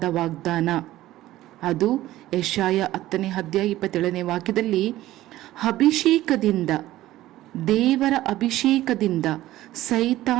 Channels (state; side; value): quieter; left; 15.4 dB